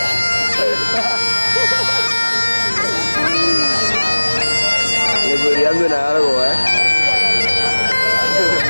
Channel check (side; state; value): both; inverted; correlation -1.00